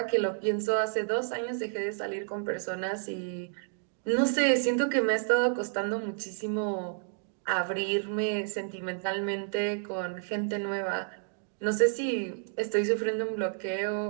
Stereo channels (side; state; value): left; silent; digital silence